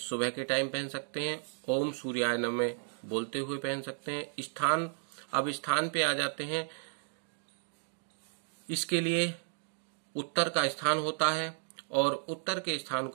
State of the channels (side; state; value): left; silent; 55 dB below the other